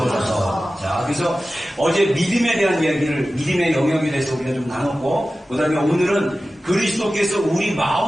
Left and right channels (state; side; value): normal; both; correlation 0.95